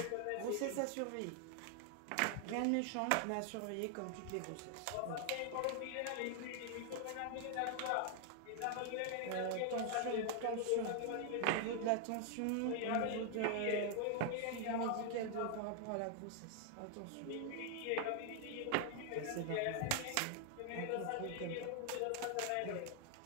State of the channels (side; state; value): both; different; correlation 0.00